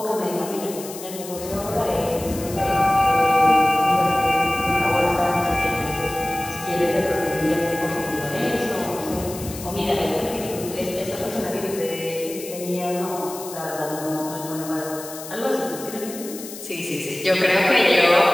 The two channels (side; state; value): left; noise; hiss, 12 dB below the sound